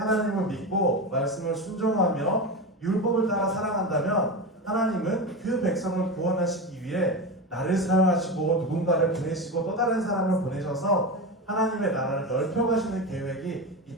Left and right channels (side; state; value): both; normal; correlation 0.21